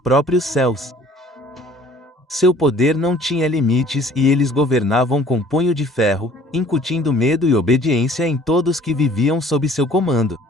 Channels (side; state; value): both; normal; correlation 0.53